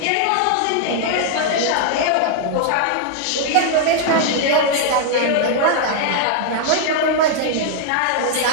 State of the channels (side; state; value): both; different; correlation -0.01